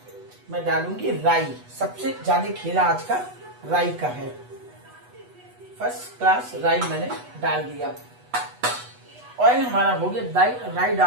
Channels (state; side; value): late; left; 8.2 ms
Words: मैं डालूंगी राई। सबसे ज्यादा खेला आज का राई का है। फर्स्ट क्लास राई मैंने डाल दिया। ऑयल हमारा हो गया। राई